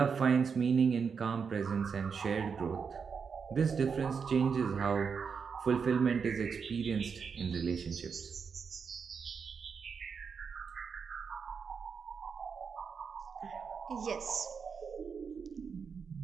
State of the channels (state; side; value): quieter; left; 6.0 dB